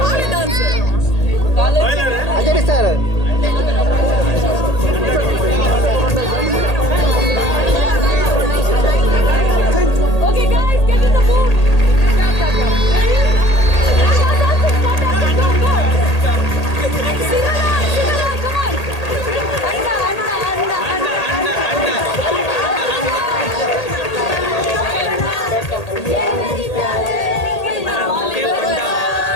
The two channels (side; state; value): right; late; 1.8 ms